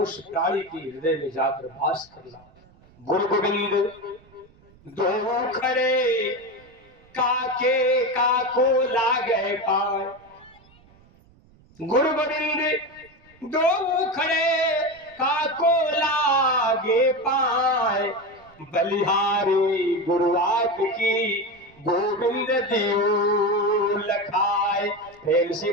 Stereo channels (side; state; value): right; noise; rumble, 29 dB below the sound